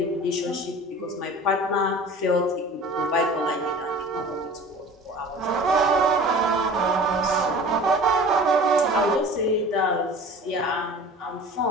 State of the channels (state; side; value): normal; both; correlation 0.41